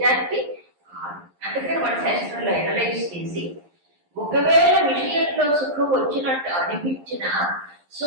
అందుకని మన శాస్త్రంలో అనలైజ్ చేసి, ఒకవేళ విషయంలో సుఖం వచ్చినట్టు అనిపించిన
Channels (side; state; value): left; late; 11 ms